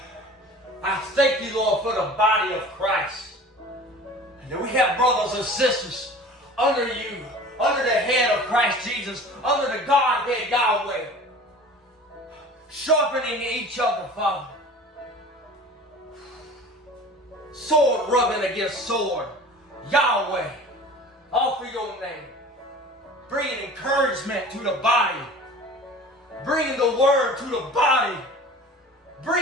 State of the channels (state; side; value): normal; both; correlation 0.41